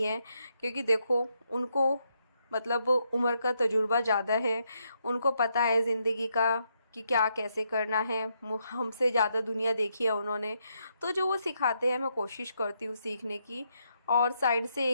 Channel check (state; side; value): inverted; both; correlation -0.79